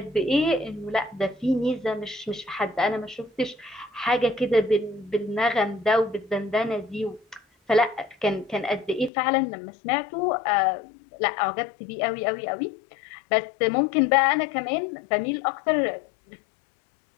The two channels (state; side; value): drops out; right; at 9.1 s